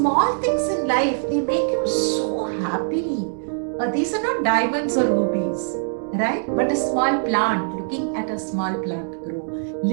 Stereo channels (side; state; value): left; silent; digital silence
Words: things in life, they make you so happy. These are not diamonds or rubies, right? But a small plant, looking at a small plant grow,